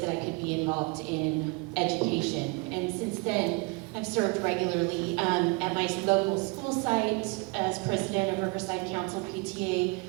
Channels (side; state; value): left; quieter; 28.4 dB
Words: that I could be involved in education. And since then, I've served regularly at my local school site as president of Riverside Council PTA,